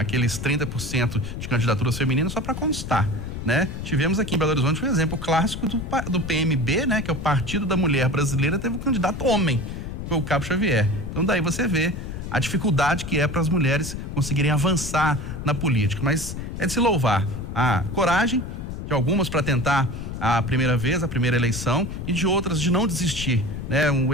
30% de candidaturas femininas só para constar, né? Tivemos aqui em Belo Horizonte um exemplo clássico do PMB, né? Que é o Partido da Mulher Brasileira, teve um candidato homem, que foi o Cabo Xavier. Então daí você vê a dificuldade que é para as mulheres conseguirem avançar na política. Mas é de se louvar a coragem de algumas para tentar a primeira vez, a primeira eleição, e de outras de não desistir, né? Um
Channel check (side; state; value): left; noise; rumble, 7 dB below the sound